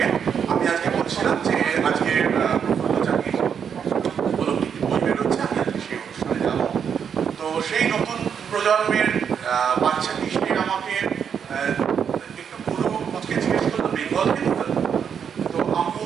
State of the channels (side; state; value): left; quieter; 7.5 dB